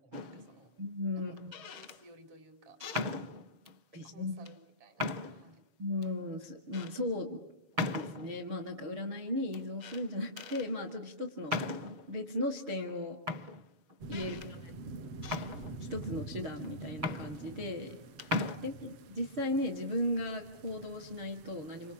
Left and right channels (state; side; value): late; left; 7.1 ms